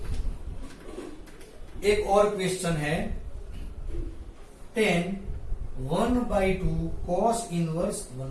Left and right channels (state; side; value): identical; both; correlation 1.00